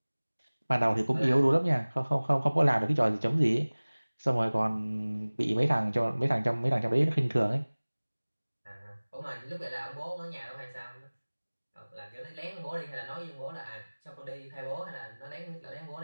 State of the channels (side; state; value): both; inverted; correlation -1.00